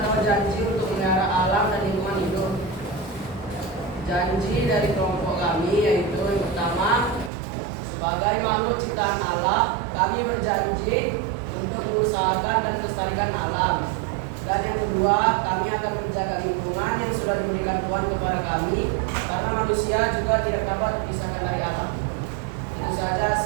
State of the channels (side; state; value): left; drops out; at 7.3 s